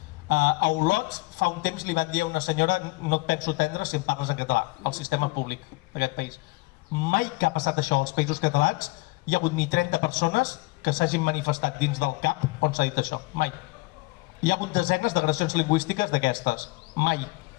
A Olot fa un temps li van dir a una senyora no et penso atendre si em parles en català, al sistema públic d'aquest país. Mai que ha passat això als països catalans hi ha hagut ni 30 persones que s'hagin manifestat dins del CAP on s'ha dit això, mai. Hi ha hagut desenes d'agressions lingüístiques d'aquestes, mai.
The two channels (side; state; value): right; quieter; 23.0 dB